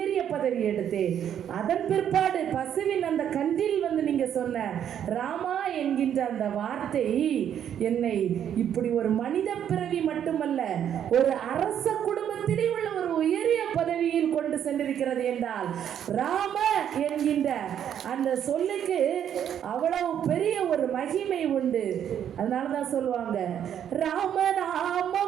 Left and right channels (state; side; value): quieter; left; 9.5 dB